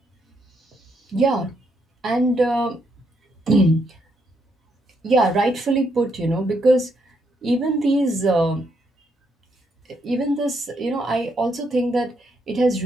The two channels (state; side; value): normal; both; correlation 0.76